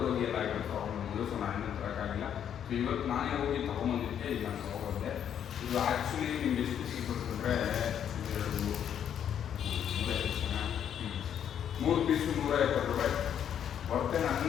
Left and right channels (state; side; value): quieter; right; 9.1 dB